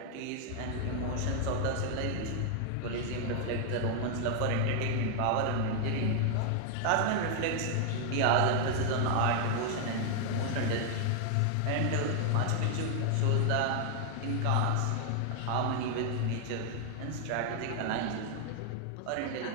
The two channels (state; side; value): different; both; correlation 0.00